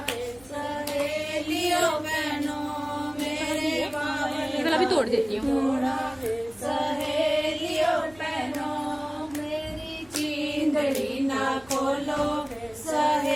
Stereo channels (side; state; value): right; noise; rumble, 26 dB below the sound